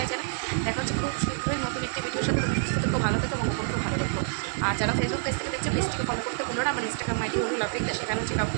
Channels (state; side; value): silent; left; 56 dB below the other